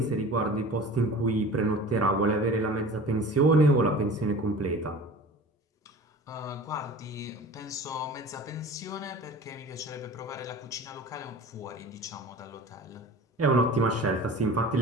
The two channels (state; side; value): normal; both; correlation 0.39